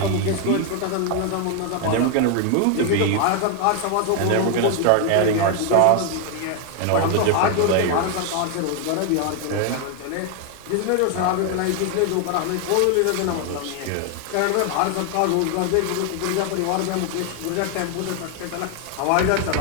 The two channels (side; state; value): both; different; correlation 0.01